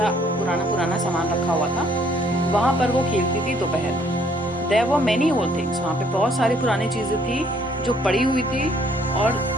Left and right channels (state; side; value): normal; both; correlation 0.64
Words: पुराना सामान रखा हुआ था. वहाँ पर वो खेलती थी दोपहर में. There were many old things, वहाँ पे बहुत सारी पुरानी चीज़ें थी जो पड़ी हुई थी और